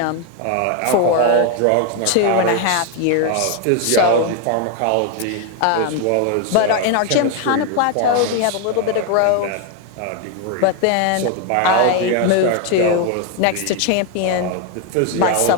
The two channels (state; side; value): different; both; correlation 0.01